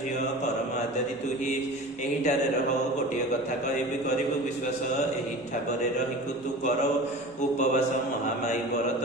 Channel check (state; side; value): normal; both; correlation 0.35